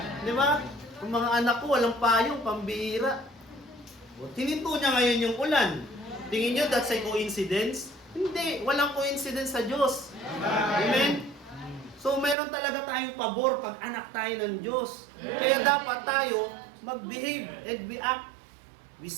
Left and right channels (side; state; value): left; drops out; at 12.4 s